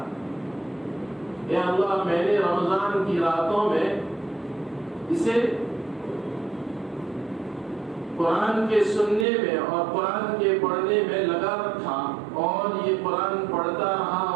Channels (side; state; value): left; drops out; at 9.2 s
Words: اے اللہ، میں نے رمضان کی راتوں میں اسے قرآن کے سننے میں اور قرآن کے پڑھنے میں لگا رکھا اور یہ قرآن پڑھتا رہا